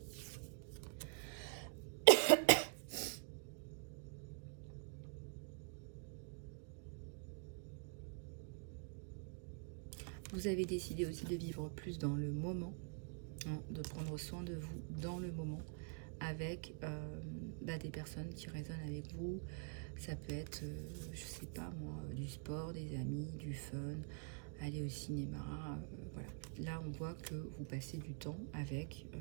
Vous avez décidé aussi de vivre plus dans le moment, hein, de prendre soin de vous dans le moment, avec des personnes qui résonnent avec vous. Ça peut être, je sais pas moi, du sport, des amis, du fun, aller au cinéma, voilà. Là, on voit que vous passez du temps avec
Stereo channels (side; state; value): left; quieter; 39.8 dB